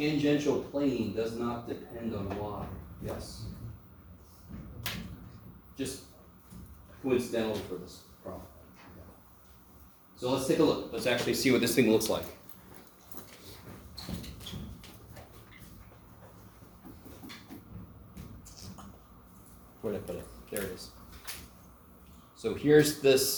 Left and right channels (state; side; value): identical; both; correlation 1.00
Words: plane does not depend on y, yes? Just coincidental for this problem. So let's take a look. Let's actually see what this thing looks like. Where did I put it? There it is. So here's